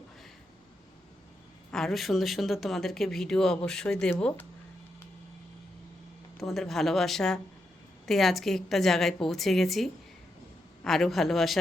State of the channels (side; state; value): both; normal; correlation 0.83